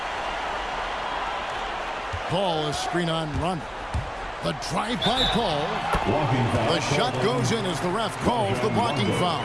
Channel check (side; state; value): both; identical; correlation 1.00